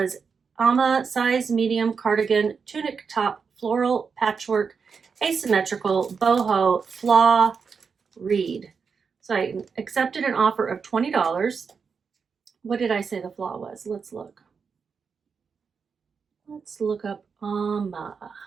Amma size medium cardigan tunic top floral patchwork asymmetrical boho flaw reed. So I accepted an offer of $20. What did I say the flaw was? Let's look. Let's look up Amma.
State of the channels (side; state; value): left; quieter; 5.7 dB